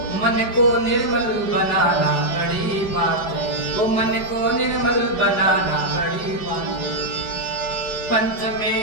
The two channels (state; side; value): late; right; 4.8 ms